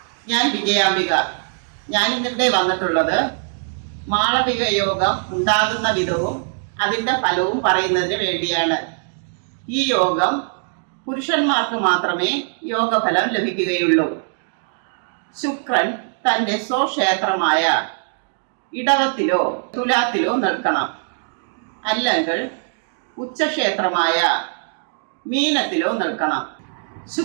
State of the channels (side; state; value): left; silent; digital silence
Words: ഞാൻ വിജയാംബിക. ഞാൻ ഇന്നിവിടെ വന്നിട്ടുള്ളത് മാളവിക യോഗം ഉണ്ടാകുന്ന വിധവും അതിൻ്റെ ഫലവും പറയുന്നതിന് വേണ്ടിയാണ്. ഈ യോഗം പുരുഷന്മാർക്ക് മാത്രമേ യോഗഫലം ലഭിക്കുകയുള്ളൂ. ശുക്രൻ തൻ്റെ സ്വക്ഷേത്രമായ ഇടവത്തിലോ തുലാത്തിലോ നിൽക്കണം, അല്ലെങ്കിൽ ഉച്ചക്ഷേത്രമായ മീനത്തിലോ നിൽക്കണം.